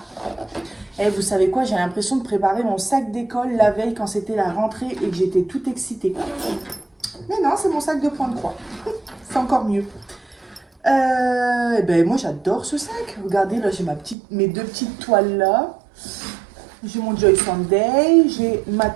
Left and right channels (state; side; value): drops out; left; at 14.2 s